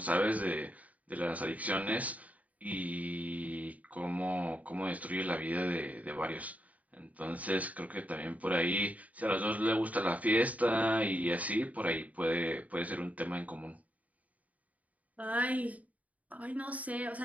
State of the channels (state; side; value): late; left; 0.071 ms